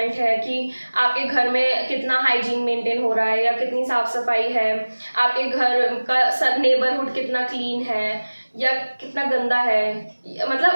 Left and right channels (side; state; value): both; inverted; correlation -1.00